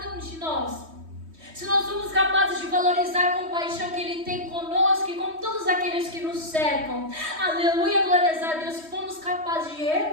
valorizar a compaixão que Ele tem conosco e com todos aqueles que nos cercam. Aleluia, glórias a Deus. Se formos capazes de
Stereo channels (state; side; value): late; left; 3.2 ms